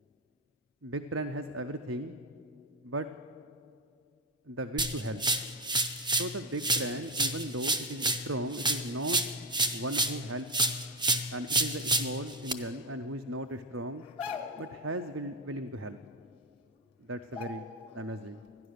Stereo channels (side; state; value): both; normal; correlation 0.10